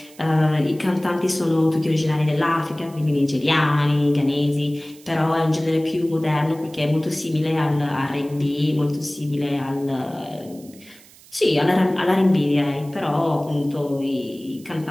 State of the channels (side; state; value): right; noise; hiss, 24 dB below the sound